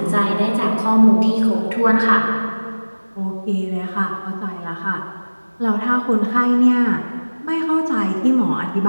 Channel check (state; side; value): inverted; both; correlation -1.00